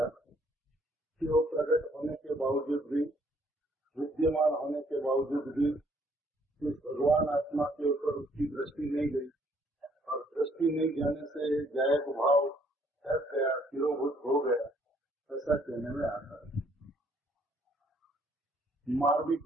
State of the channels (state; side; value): normal; both; correlation 0.65